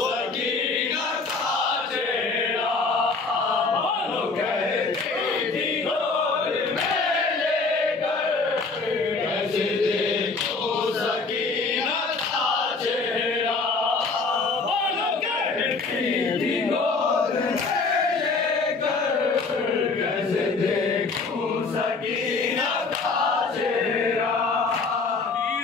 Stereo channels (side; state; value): right; quieter; 4.1 dB